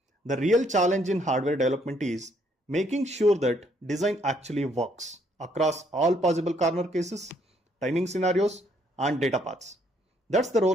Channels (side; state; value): both; normal; correlation 0.68